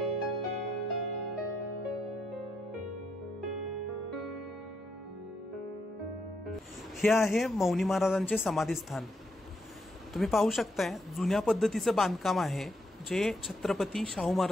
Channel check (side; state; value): both; normal; correlation 0.79